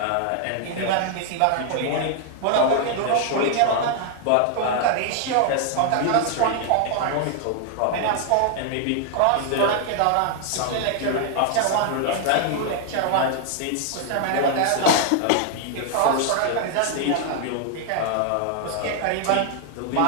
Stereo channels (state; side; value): different; both; correlation 0.00